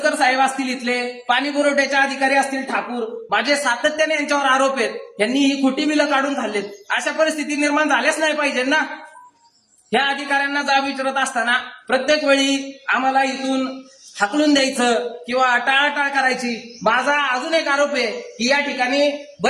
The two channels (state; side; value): identical; both; correlation 1.00